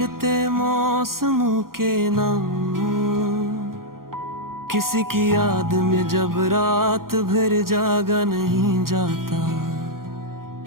मौसमों के नाम, किसी की याद में जब रात भर जागा नहीं जाता।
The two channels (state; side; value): late; left; 0.92 ms